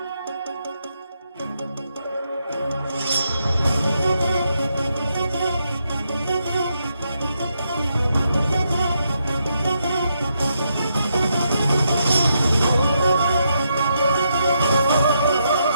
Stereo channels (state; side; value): inverted; both; correlation -0.80